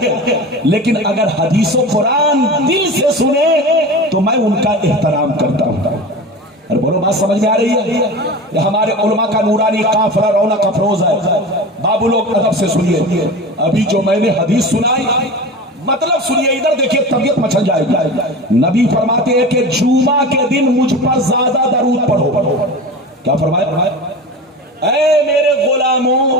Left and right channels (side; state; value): both; normal; correlation 0.31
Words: لیکن اگر حدیث و قرآن دل سے سنے تو میں ان کا احترام کرتا ہوں۔ اور بولو، بات سمجھ میں آ رہی ہے؟ یہ ہمارے علماء کا نورانی قافلہ رونق افروز ہے۔ بابو لوگ ادب سے سنیے، ابھی جو میں نے حدیث سنائی مطلب سنیے، ادھر دیکھیے، طبیعت مچل جائے گی۔ نبی فرماتے ہیں کہ جمعہ کے دن مجھ پر زیادہ درود پڑھو۔ کیا فرمایا؟ اے میرے غلاموں،